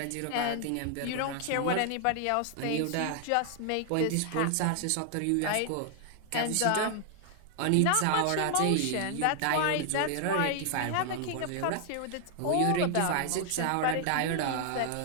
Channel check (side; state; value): both; different; correlation 0.00